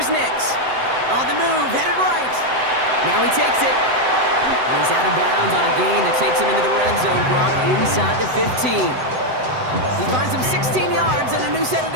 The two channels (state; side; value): late; left; 7.9 ms